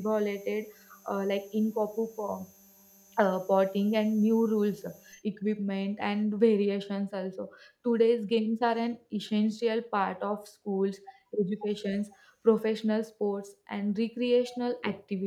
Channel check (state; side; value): identical; both; correlation 1.00